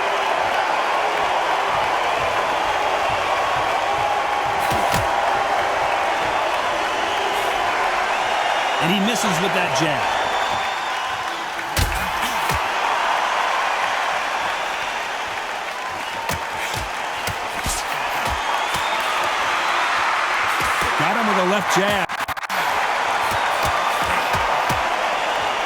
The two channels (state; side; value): identical; both; correlation 1.00